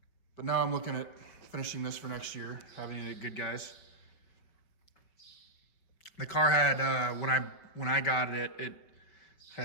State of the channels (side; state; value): right; late; 5.6 ms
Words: But now I'm looking at finishing this for next year, having it good, guys. The car had, when I got it,